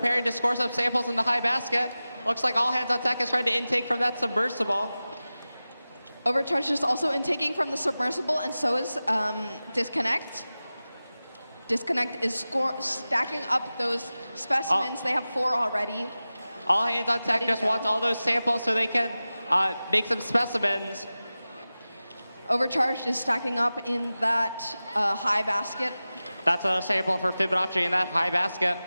to score some samples in the high basket. Looks like All Hands on Tech is trying to intake from that submersible. Overcharged is also intaking from the submersible, and so is Disconnect. Disconnect is stacking up those specimens. They have 4 already. All Hands on Tech Ready to just go. wants all those samples so they can make some specimens. Overcharged is stacking up in that high basket. That's another sample for Fibonacci in that high basket.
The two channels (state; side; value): inverted; both; correlation -0.96